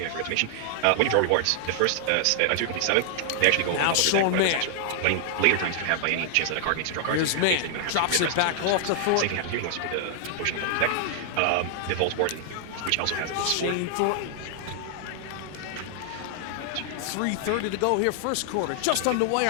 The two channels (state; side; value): different; both; correlation 0.00